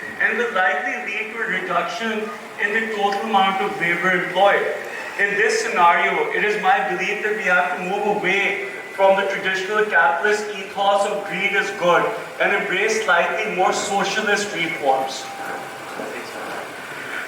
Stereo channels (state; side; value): identical; both; correlation 1.00